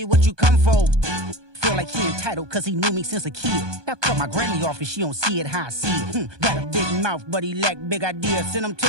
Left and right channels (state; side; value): late; left; 1.2 ms